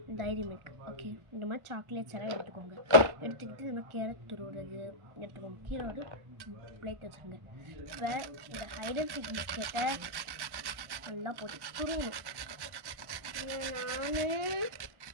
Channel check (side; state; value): left; late; 1.1 ms